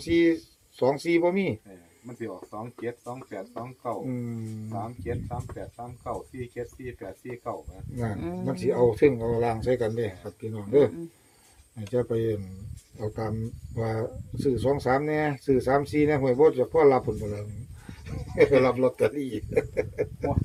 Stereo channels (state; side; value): identical; both; correlation 1.00